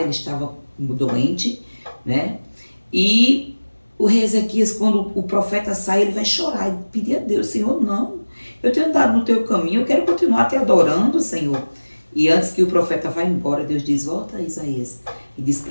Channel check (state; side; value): inverted; both; correlation -1.00